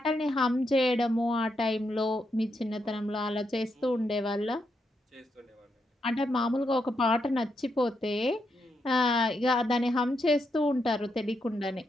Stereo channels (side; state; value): both; normal; correlation 0.81